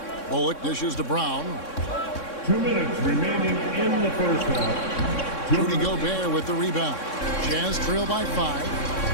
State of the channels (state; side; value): late; right; 3.6 ms